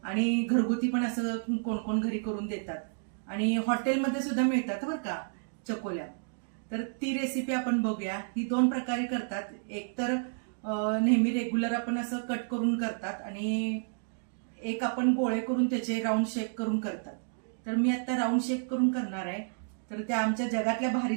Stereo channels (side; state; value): left; silent; digital silence